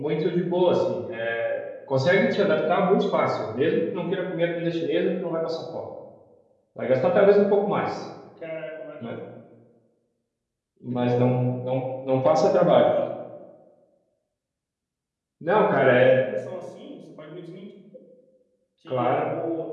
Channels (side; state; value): both; identical; correlation 1.00